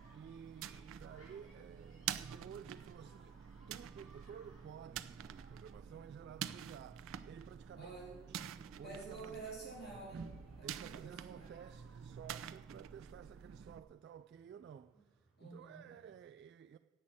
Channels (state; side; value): quieter; left; 7.6 dB